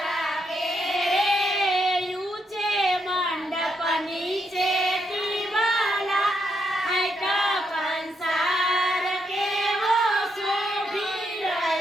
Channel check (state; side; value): normal; both; correlation 0.78